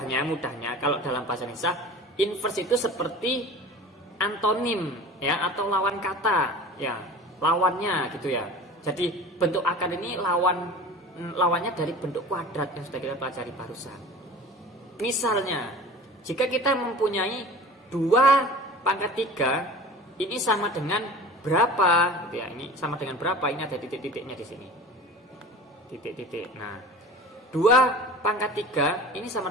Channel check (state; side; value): normal; both; correlation 0.38